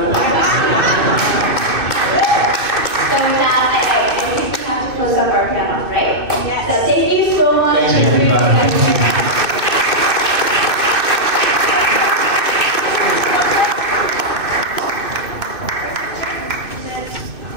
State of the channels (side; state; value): left; late; 2.6 ms